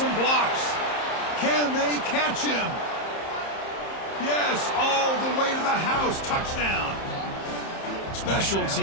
blocks. Can they catch him? Yes, all the way to the house. Touchdown. Special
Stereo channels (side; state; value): right; late; 31 ms